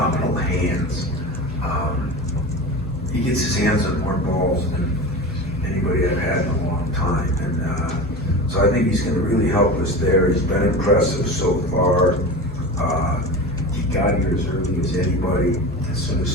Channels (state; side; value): noise; left; hum, 10 dB below the sound